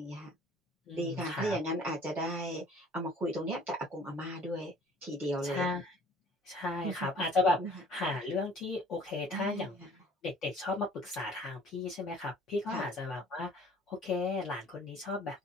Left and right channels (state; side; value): normal; both; correlation 0.52